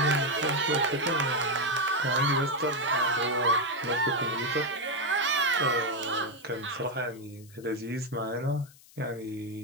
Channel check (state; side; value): noise; left; hiss, 24 dB below the sound